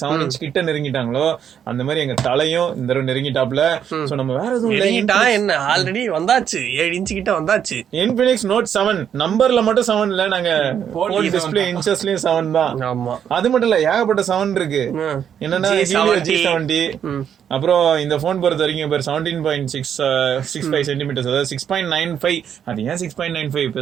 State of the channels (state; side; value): quieter; left; 8.7 dB